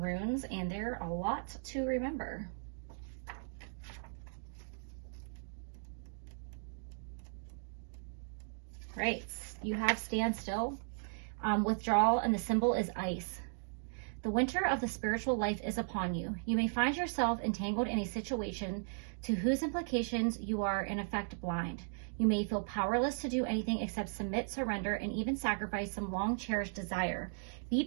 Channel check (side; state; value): left; silent; digital silence